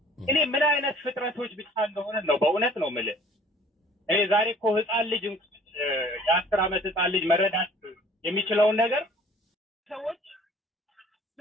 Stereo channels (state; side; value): normal; both; correlation 0.52